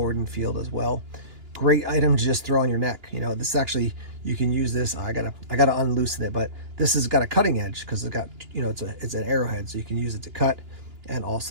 and Field as well. Great item to just throw on your neck. You know, this actually, you can use this. I gotta unloosen it, but this has got a cutting edge because it's got, you know, it's an arrowhead, so you can use it to cut and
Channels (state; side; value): late; left; 2.9 ms